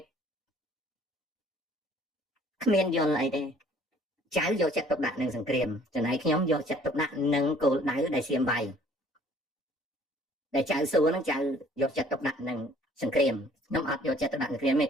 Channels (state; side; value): normal; both; correlation 0.56